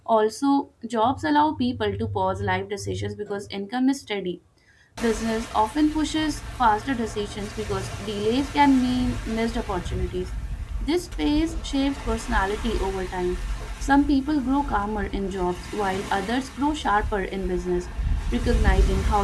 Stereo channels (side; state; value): both; identical; correlation 1.00